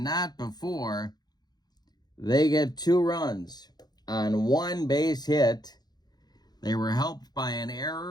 before they get 2 runs on 1 base hit. They were helped by an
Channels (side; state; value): right; late; 0.20 ms